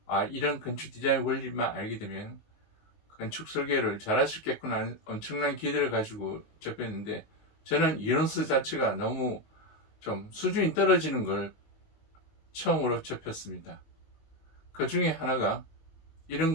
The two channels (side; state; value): right; late; 19 ms